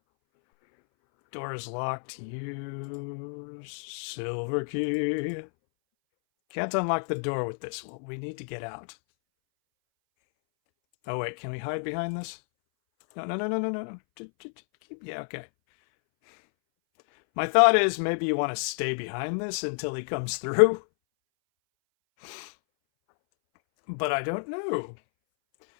Door is locked. Use silver key. Can't unlock the door with this. Well, we need to get out. Oh, wait. Can we hide behind this? No. Yeah, okay. My thought is maybe you want to stay behind this until he comes through. But I don't know.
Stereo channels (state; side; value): silent; right; 59 dB below the other